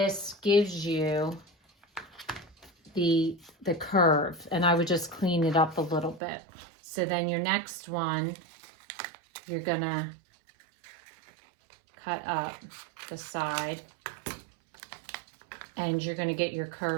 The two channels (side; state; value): left; drops out; at 6.2 s